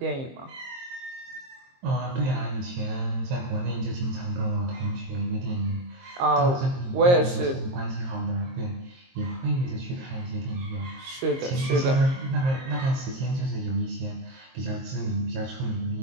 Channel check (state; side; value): late; left; 23 ms